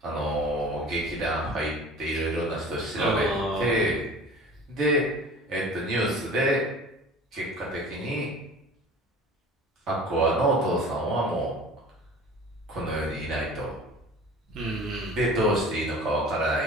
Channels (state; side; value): normal; both; correlation 0.42